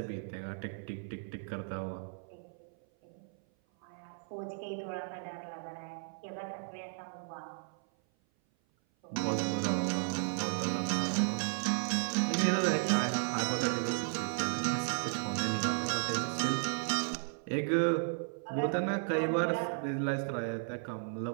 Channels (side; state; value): left; silent; 55 dB below the other